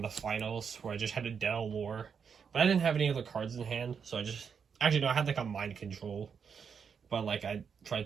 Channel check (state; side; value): quieter; left; 6.6 dB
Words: the finals where I just had to dead Allure, but I didn't have any other cards in hand, so I just, actually no, I had like a Mind Control, but like I